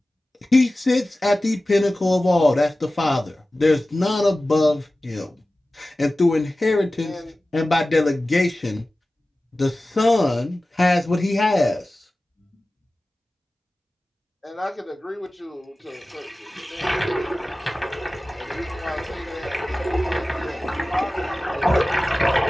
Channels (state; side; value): normal; both; correlation 0.96